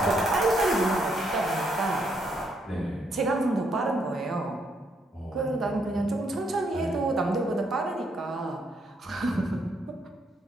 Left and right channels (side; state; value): both; normal; correlation 0.74